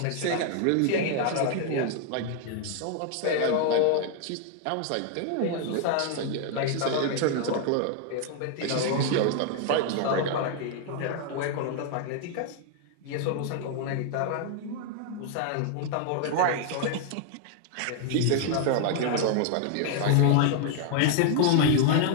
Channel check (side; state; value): both; different; correlation 0.00